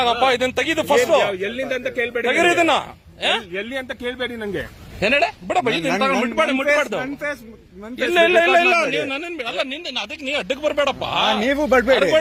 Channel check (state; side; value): identical; both; correlation 1.00